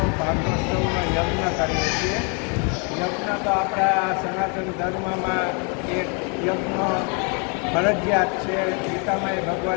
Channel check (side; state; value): right; quieter; 35.9 dB